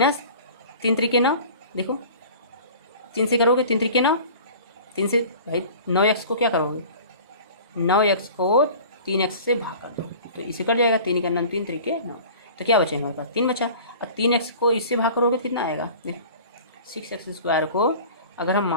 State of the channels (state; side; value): inverted; both; correlation -0.42